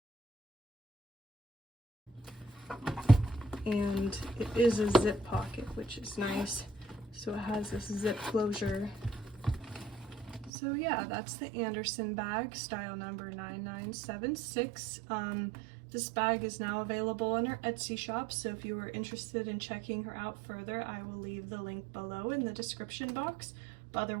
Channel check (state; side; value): drops out; left; at 10.5 s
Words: And it is a zip pocket, which is nice. So it has this zip closure. So yeah, that's the Anderson bag, style number 9976. This bag is now available in our Etsy shop, so if you are interested in checking her out further, I will leave the link below in the description box. But